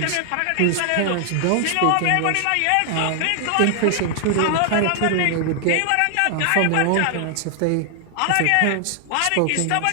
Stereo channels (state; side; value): different; both; correlation 0.00